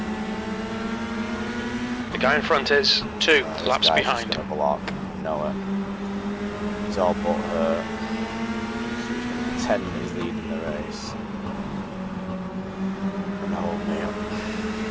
The guy in front is 2 laps behind. He's gonna block Noah. He's all but hurt. 10 is leading the race. And hold me up.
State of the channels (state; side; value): identical; both; correlation 1.00